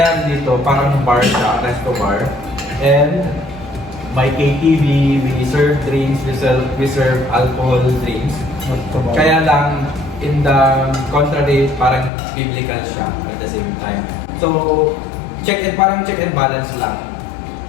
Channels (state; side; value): drops out; right; at 12.1 s